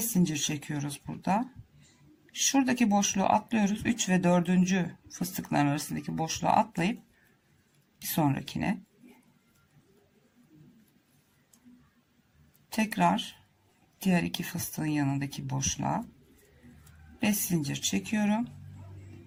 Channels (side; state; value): both; identical; correlation 1.00